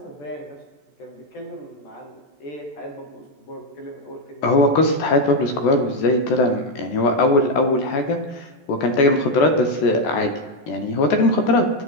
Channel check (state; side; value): late; right; 14 ms